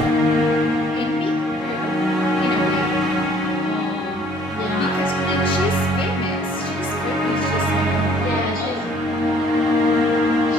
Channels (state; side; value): normal; both; correlation 0.60